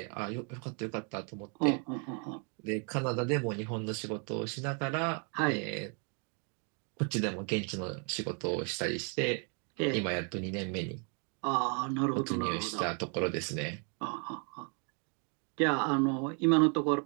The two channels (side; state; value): left; quieter; 38.5 dB